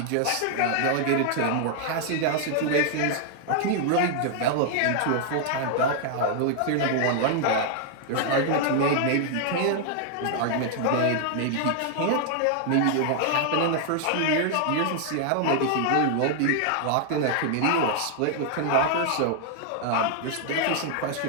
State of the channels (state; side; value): different; both; correlation 0.00